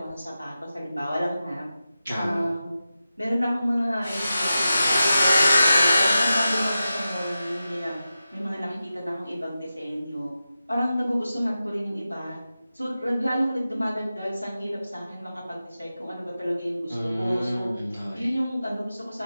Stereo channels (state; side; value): inverted; both; correlation -0.92